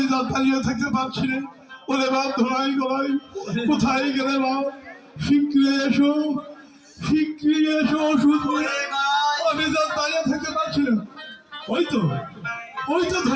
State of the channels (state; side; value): identical; both; correlation 1.00